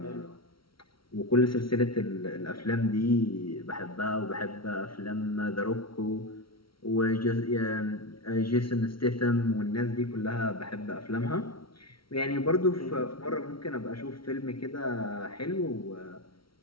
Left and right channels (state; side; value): late; right; 0.74 ms